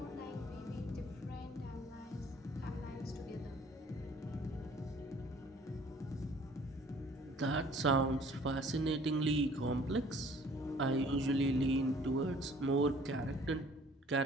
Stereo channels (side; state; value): both; normal; correlation 0.54